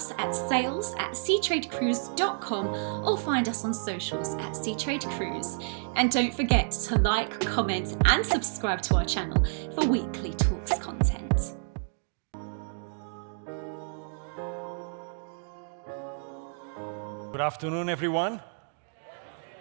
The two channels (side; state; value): left; silent; digital silence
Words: at sales@seatradecruise.com or find us on socials at Seatrade Cruise. And don't forget to like, comment and subscribe to our channel for weekly talks content. Good afternoon, everyone.